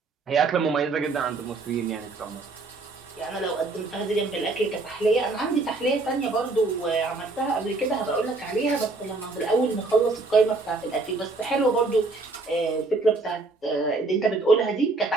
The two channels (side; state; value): left; quieter; 3.5 dB